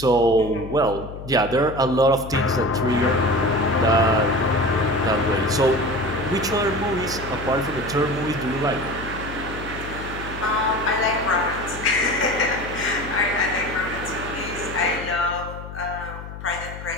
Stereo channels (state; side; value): noise; left; hum, 11 dB below the sound